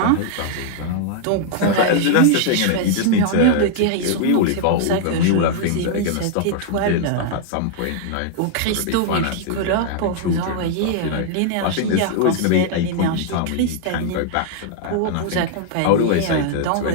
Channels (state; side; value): different; both; correlation -0.01